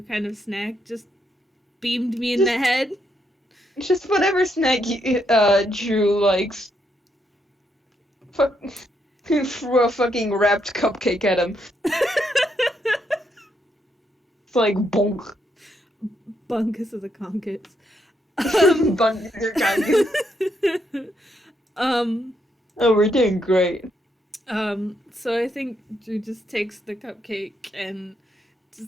kind of snack just beamed me in Just the head? just whatever snack Drew likes. Fuck. Threw a fucking wrapped cupcake at him. It's like bonk. Bunkus of the conkus. Bun your congus. um, Oh, we're doing great. so I think Drew just takes the cupcake and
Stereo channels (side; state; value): both; normal; correlation 0.77